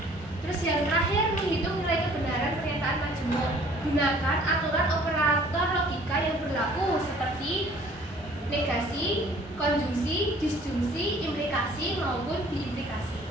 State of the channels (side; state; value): both; normal; correlation 0.54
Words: Terus yang terakhir, menghitung nilai kebenaran pernyataan majemuk. Gunakan aturan operator logika yang berlaku seperti negasi, konjungsi, disjungsi, implikasi maupun biimplikasi.